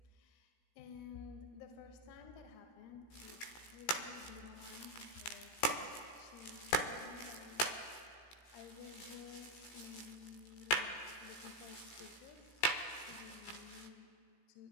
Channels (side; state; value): right; late; 17 ms